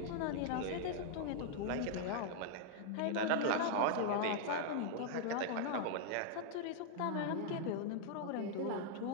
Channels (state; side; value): different; both; correlation -0.01